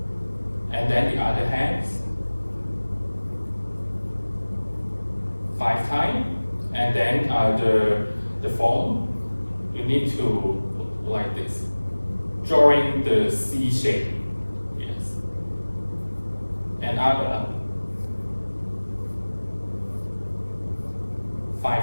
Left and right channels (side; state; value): both; inverted; correlation -1.00